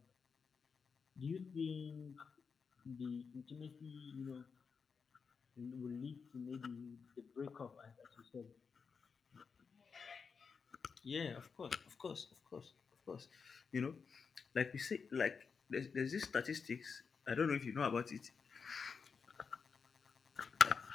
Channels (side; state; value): right; quieter; 5.6 dB